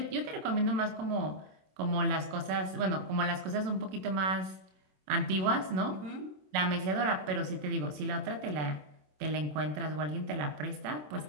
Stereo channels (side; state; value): left; late; 27 ms